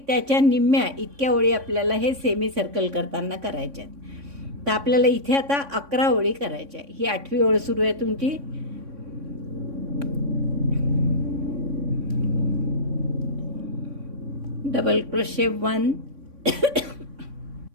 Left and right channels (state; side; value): late; left; 3.6 ms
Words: त्याच्या निम्म्या इतक्या ओळी आपल्याला हे सेमी सर्कल करताना करायच्या आहेत. तर आपल्याला इथे आता 11 ओळी करायच्या आहे. ही 8वी ओळ सुरू आहे तुमची. डबल क्रोशे 1